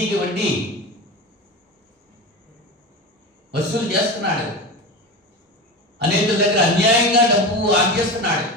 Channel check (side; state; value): both; normal; correlation 0.25